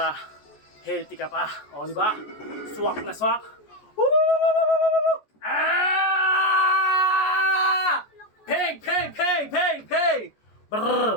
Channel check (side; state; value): right; late; 14 ms